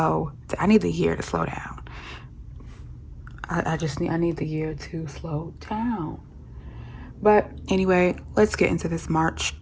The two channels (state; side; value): identical; both; correlation 1.00